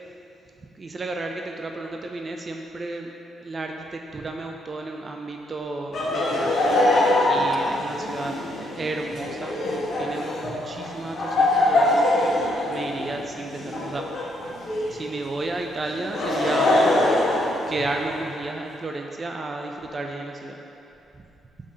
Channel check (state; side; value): normal; both; correlation 0.73